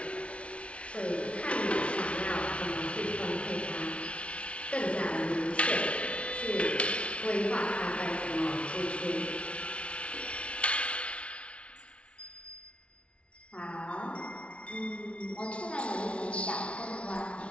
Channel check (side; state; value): right; late; 0.061 ms